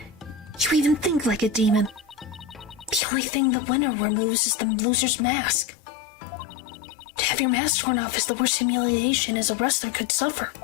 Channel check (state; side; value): drops out; right; at 3.0 s